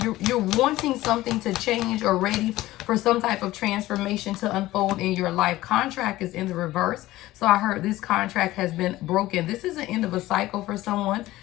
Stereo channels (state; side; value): quieter; right; 16.7 dB